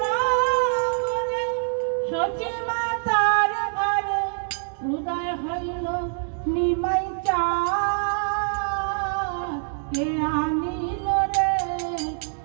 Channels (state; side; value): silent; left; digital silence